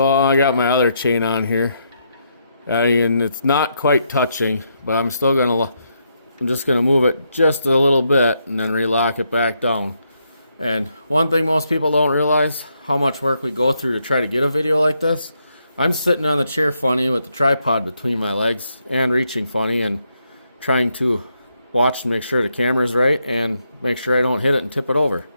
I got my other chain on here, and it's not quite touching, but I'm just gonna move it just a little bit and then relock it back down. And one thing most people don't realize, how much work we go through to try to get a video like this. I'm sitting on the chair funny with the tripod between my legs and reaching funny and trying to watch to make sure the camera's right and make sure I don't hit it and tip it over.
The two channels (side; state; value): both; inverted; correlation -0.78